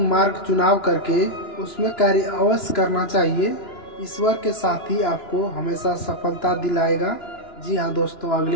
मार्ग चुनाव करके उसमें कार्य अवश्य करना चाहिए। ईश्वर के साथ ही आपको हमेशा सफलता दिलाएगा। जी हाँ दोस्तों,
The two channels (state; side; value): late; right; 2.9 ms